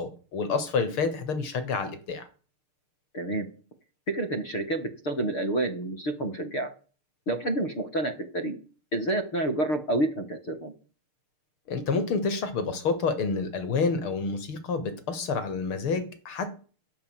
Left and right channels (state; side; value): late; right; 6.6 ms